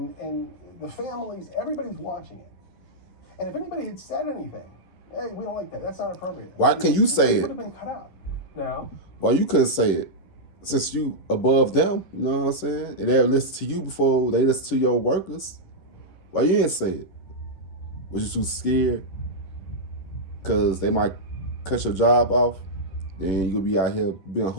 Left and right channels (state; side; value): late; right; 11 ms